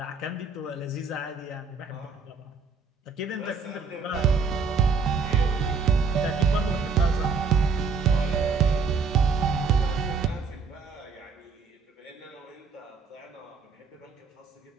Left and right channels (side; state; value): left; quieter; 5.0 dB